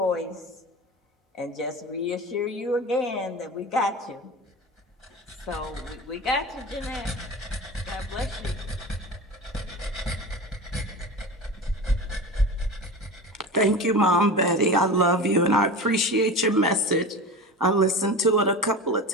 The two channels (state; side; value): normal; both; correlation 0.30